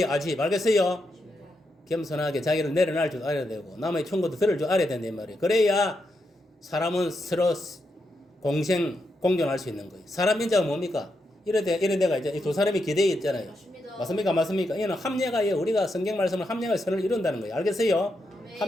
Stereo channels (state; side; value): normal; both; correlation 0.83